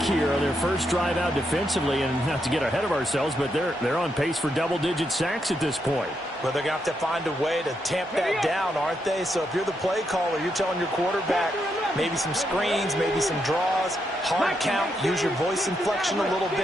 here on their first drive out defensively, and not to get ahead of ourselves, but they're on pace for double-digit sacks at this point. Well, they're going to have to find a way to tamp that down, aren't they? So if you're the play caller, you're telling your quarterback, Maybe some screens, maybe some draws, hard count, use your voice inflection a little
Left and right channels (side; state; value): both; normal; correlation 0.81